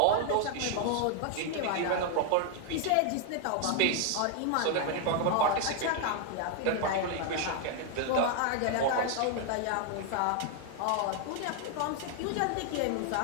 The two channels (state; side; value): different; both; correlation 0.00